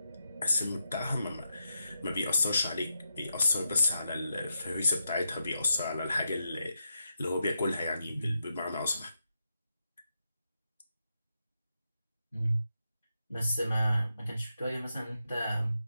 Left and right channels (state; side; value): inverted; both; correlation -0.85